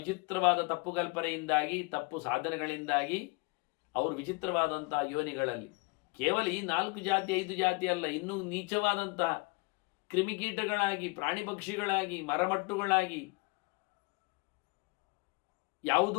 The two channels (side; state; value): right; quieter; 28.9 dB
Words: ತಪ್ಪು ಕಲ್ಪನೆಯಿಂದಾಗಿ, ತಪ್ಪು ಸಾಧನೆಗಳಿಂದಾಗಿ ಅವರು ವಿಚಿತ್ರವಾದಂತಹ ಯೋನಿಗಳಲ್ಲಿ, ಕೇವಲ ಈ 4 ಜಾತಿ 5 ಜಾತಿ ಅಲ್ಲ, ಇನ್ನೂ ನೀಚವಾದಂತಹ ಕ್ರಿಮಿಕೀಟಗಳಾಗಿ, ಪ್ರಾಣಿ ಪಕ್ಷಿಗಳಾಗಿ, ಮರಮಟ್ಟುಗಳಾಗಿ,